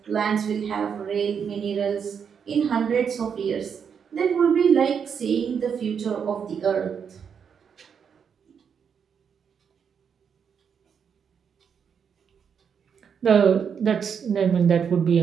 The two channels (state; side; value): quieter; left; 7.1 dB